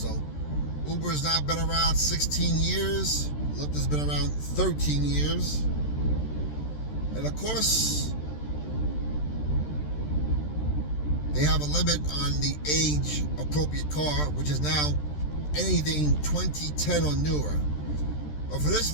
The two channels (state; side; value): late; right; 13 ms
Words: Uber has now been around 16 years. Lyft has been around 13 years, and of course, they have a limit on the age appropriate car, which is now anything 2010 or newer. But for this